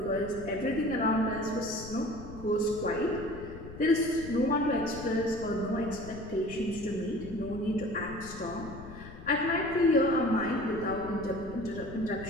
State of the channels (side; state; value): left; noise; rumble, 13 dB below the sound